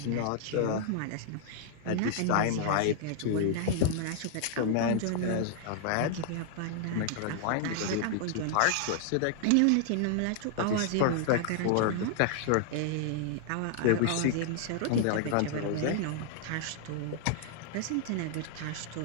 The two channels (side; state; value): both; different; correlation -0.01